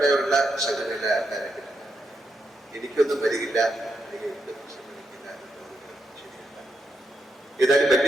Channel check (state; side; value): normal; both; correlation 0.82